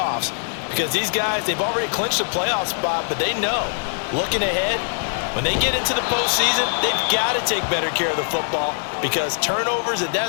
Because these guys, they've already clinched a playoff spot, but they know, looking ahead, when they get into the postseason, they've got to take better care of the football because turnovers in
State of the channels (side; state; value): right; silent; digital silence